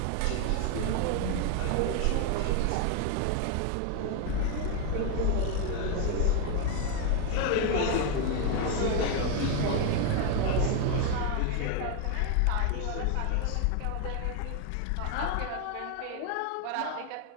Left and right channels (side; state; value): both; different; correlation 0.01